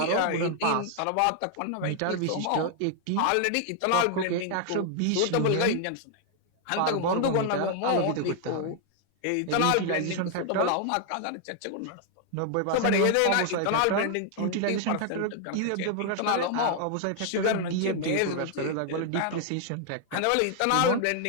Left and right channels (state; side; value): different; both; correlation 0.00